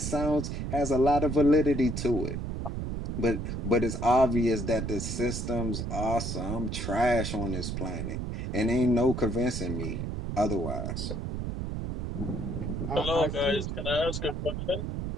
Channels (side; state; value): right; noise; rumble, 3 dB below the sound